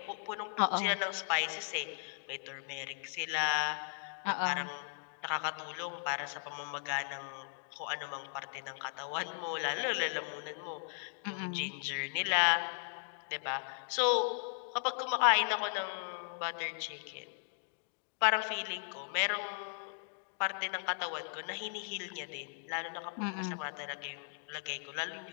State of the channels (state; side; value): silent; right; 53 dB below the other